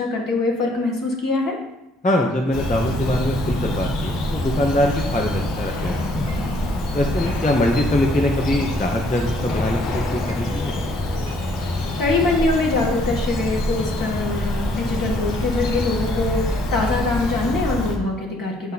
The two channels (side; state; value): both; normal; correlation 0.65